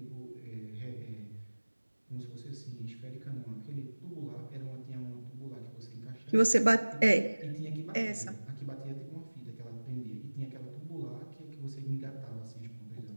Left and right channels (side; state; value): both; inverted; correlation -1.00